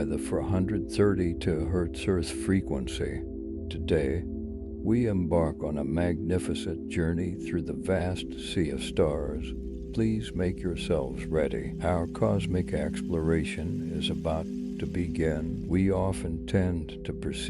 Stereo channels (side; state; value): both; identical; correlation 1.00